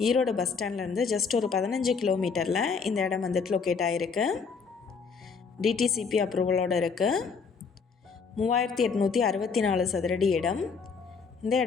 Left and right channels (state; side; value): quieter; right; 5.4 dB